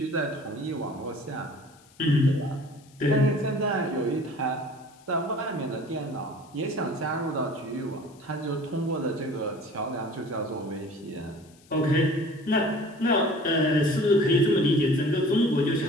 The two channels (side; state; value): left; noise; hiss, 28 dB below the sound